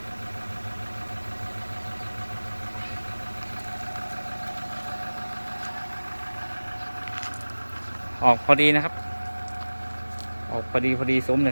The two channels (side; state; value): both; inverted; correlation -1.00